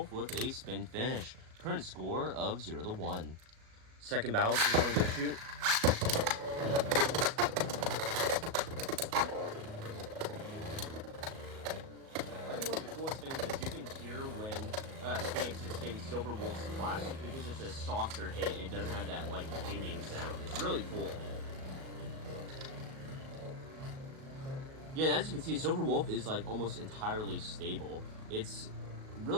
with a spin finish. Current score of 0-1. Second battle, go shoot. Things is you can hear when Phoenix is hitting Silverwolf's plastic because it's a softer hit and it doesn't have that like dinging sound. It's really cool. Yeah, and as you can see, Silverwolf is like almost entirely stable. It's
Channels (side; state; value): left; late; 37 ms